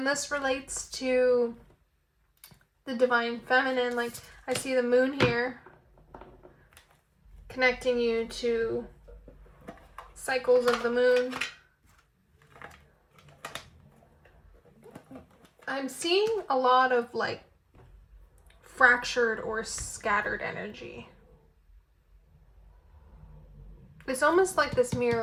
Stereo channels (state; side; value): identical; both; correlation 1.00